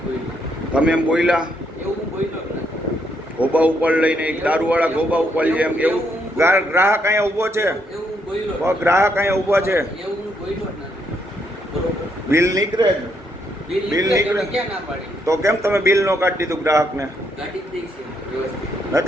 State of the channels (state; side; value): normal; both; correlation 0.75